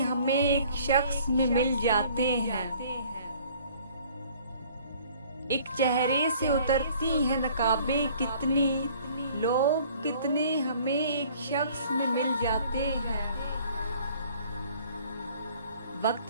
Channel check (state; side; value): inverted; both; correlation -0.54